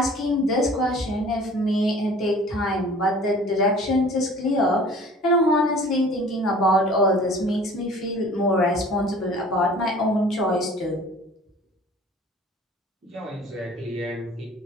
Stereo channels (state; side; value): normal; both; correlation 0.47